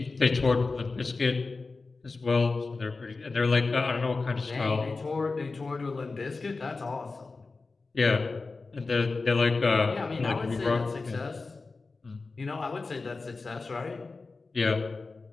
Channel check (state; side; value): quieter; right; 3.9 dB